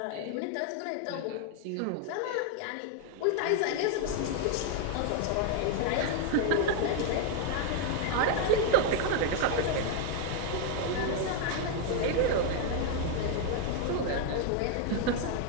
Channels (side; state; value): both; different; correlation 0.01